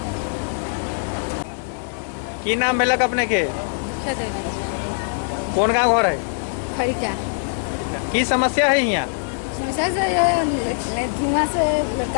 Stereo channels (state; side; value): silent; right; digital silence